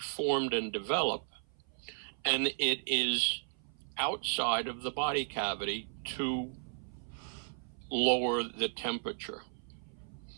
and develop, and it is outside of the body cavity to lower the temperature.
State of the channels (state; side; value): silent; left; 54 dB below the other